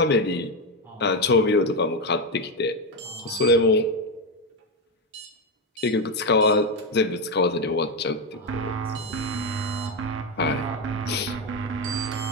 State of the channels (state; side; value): normal; both; correlation 0.09